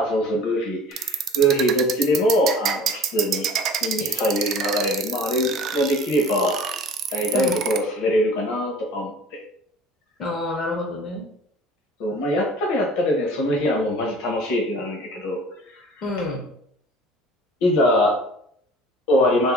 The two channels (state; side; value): normal; both; correlation 0.45